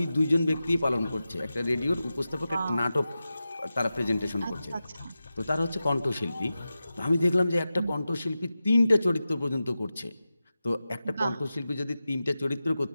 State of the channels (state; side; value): inverted; both; correlation -0.93